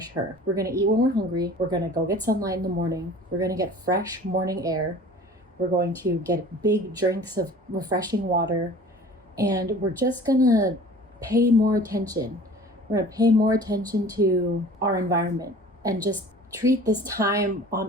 her. We're gonna eat when we're hungry. We're gonna go get sunlight in the morning. We're gonna get fresh morning air. We're going to get big drinks of refreshing water. And we're just gonna pay more attention. We're gonna pay more attention to our environment and just treat this time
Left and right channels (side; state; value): both; normal; correlation 0.44